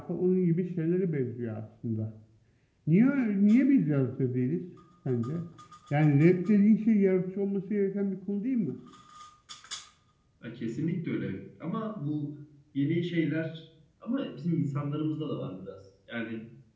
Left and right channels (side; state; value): both; identical; correlation 1.00